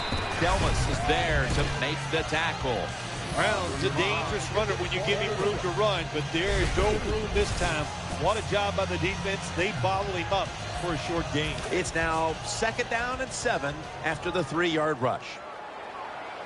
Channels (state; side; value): identical; both; correlation 1.00